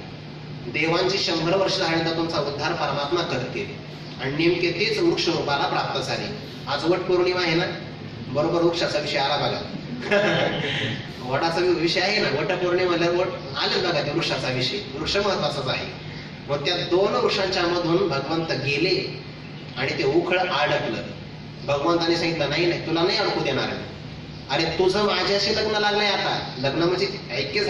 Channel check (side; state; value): both; identical; correlation 1.00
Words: देवांची 100 वर्ष झाल्यानंतर तुमचा उद्धार परमात्मा करतील, आणि नेमके तेच वृक्ष रूपाला प्राप्त झाले. आज वट पौर्णिमा आहे ना, बरोबर वृक्षाचा विषय आला बघा. वटाचा विषय आहे ना, वट पौर्णिमा वट आले बघा, त्या वृक्षाचा विषय, वृक्ष महत्वाचाच आहे. मग त्या 2 वृक्षांच्या मधून भगवंत गेले आणि ते उखळ अडकलं. भगवंताने सांगितलं, नाही नाही तुला नाही अडकू देणार. अरे तुझं माझ्याशी लग्न लागलंय, आता लग्न म्हणजे ऐक्य